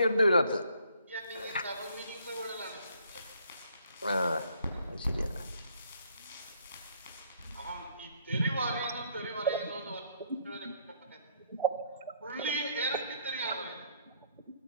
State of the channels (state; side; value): inverted; both; correlation -0.66